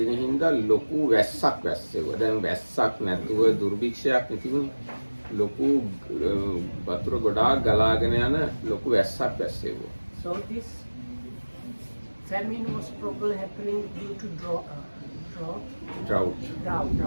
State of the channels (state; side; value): inverted; both; correlation -1.00